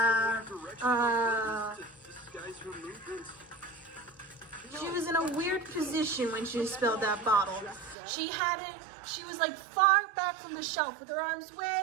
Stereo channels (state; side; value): drops out; left; at 8.0 s